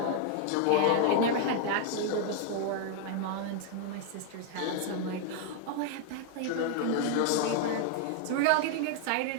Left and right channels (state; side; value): different; both; correlation 0.00